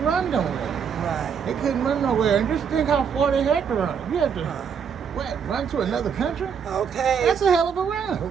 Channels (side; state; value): left; quieter; 7.0 dB